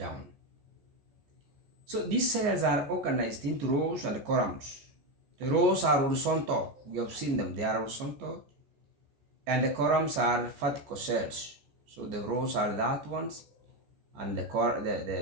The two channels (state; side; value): late; left; 14 ms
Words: So these cells are organized into rows and columns. The rows are horizontal. We have seen them. They are horizontal. And the columns are vertical cells. So the rows are that ones, and the